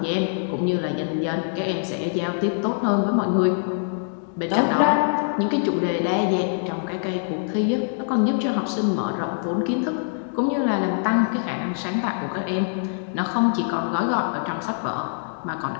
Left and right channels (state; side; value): silent; right; digital silence